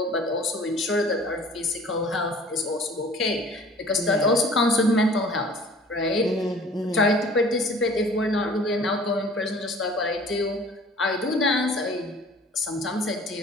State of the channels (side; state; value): both; normal; correlation 0.49